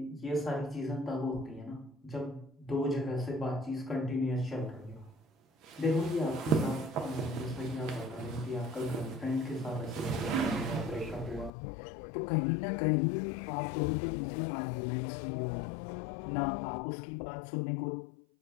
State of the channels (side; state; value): right; drops out; at 11.5 s